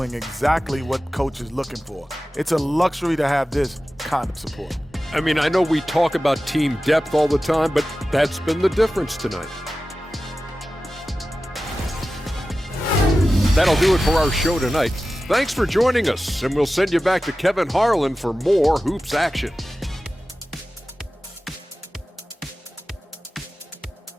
exactly what coach is looking for. It's a luxury to have this kind of support. I mean, I know we talk about team depth all the time, but that's been the difference tonight. That'll do it for our show tonight. Thanks for joining us, and we'll send you back to Kevin Harlan for more hoops action.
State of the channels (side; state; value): both; normal; correlation 0.95